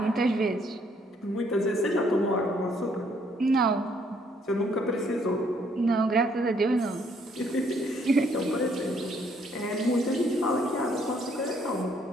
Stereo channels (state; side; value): normal; both; correlation 0.67